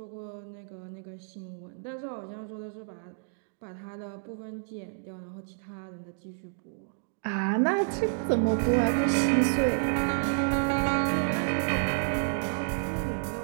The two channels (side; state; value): left; silent; digital silence